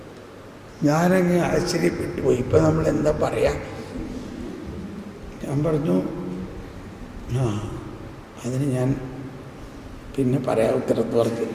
ഞാനങ്ങ് ആശ്ചര്യപ്പെട്ടു പോയി. ഇപ്പം നമ്മൾ എന്താ പറയാ? ഞാൻ പറഞ്ഞു, അതിന് ഞാൻ പിന്നെ പറയാം ഉത്തരത്ത് പറഞ്ഞു.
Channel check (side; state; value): both; identical; correlation 1.00